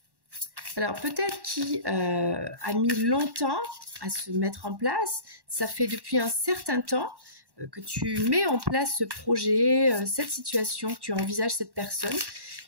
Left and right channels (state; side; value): late; left; 1.1 ms